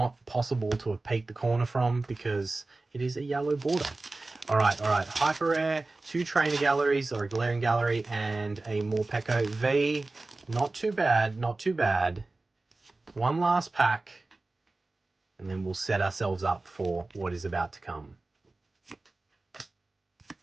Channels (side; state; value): left; quieter; 3.2 dB